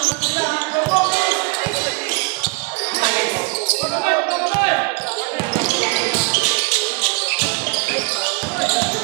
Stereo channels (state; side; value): quieter; left; 30.0 dB